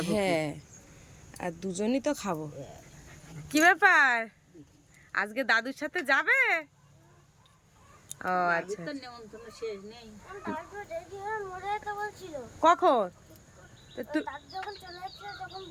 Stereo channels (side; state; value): both; identical; correlation 1.00